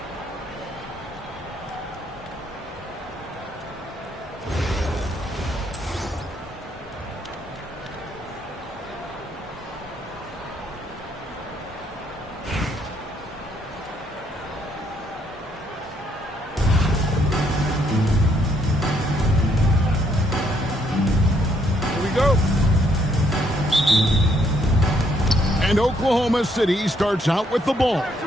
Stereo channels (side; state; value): both; normal; correlation 0.71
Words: And Oklahoma City starts out with the ball.